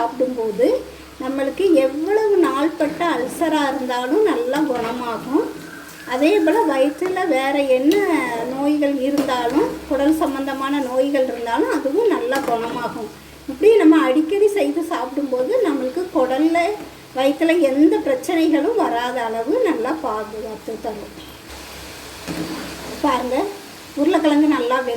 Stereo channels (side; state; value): both; identical; correlation 1.00